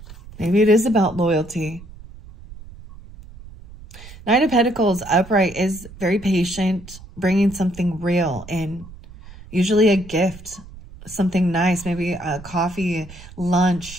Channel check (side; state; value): right; noise; rumble, 18 dB below the sound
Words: Maybe it is about loyalty. Knight of Pentacles upright is very patient, bringing something real in. Usually a gift, something nice, maybe a coffee,